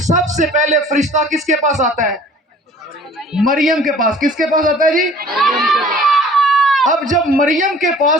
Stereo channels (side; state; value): both; normal; correlation 0.49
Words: سب سے پہلے فرشتہ کس کے پاس آتا ہے؟ مریم کے پاس. کس کے پاس آتا ہے جی؟ اب جب مریم کے